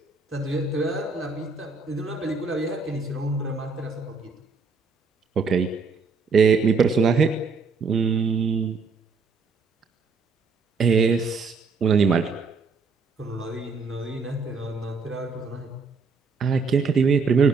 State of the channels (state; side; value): quieter; left; 4.6 dB